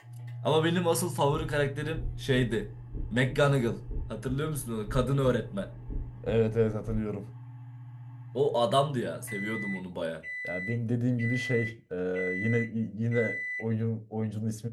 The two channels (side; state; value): both; identical; correlation 1.00